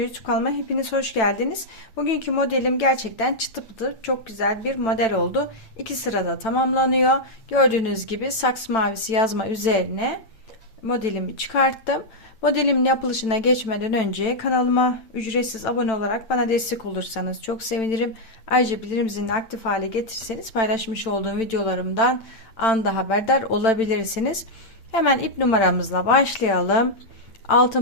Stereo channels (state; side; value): late; right; 9.0 ms